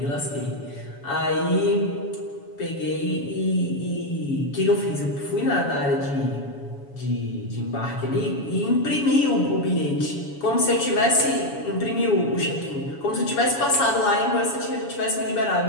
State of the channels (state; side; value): late; right; 7.1 ms